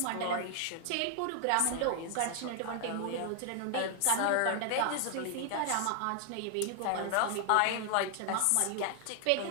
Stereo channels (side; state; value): both; different; correlation 0.00